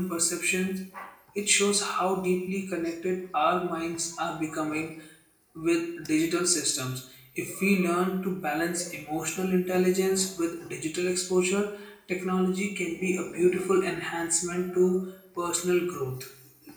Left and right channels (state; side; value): identical; both; correlation 1.00